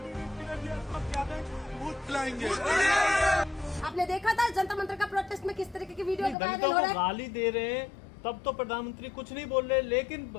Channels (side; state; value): right; drops out; at 6.4 s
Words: आपने देखा था जंतर मंतर का प्रोटेस्ट में किस तरीके की वीडियो वायरल दलितों हो को रहा है। गाली दे रहे हैं तब तो प्रधानमंत्री कुछ नहीं बोल रहे, लेकिन